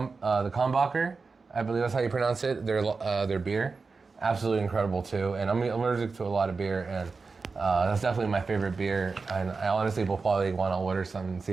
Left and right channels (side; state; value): left; quieter; 4.4 dB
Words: I believe that's how you pronounce it. Their beer, absolutely incredible too. And I'm allergic to a lot of beer, and that's definitely my favorite beer. And I honestly will probably want to order some and see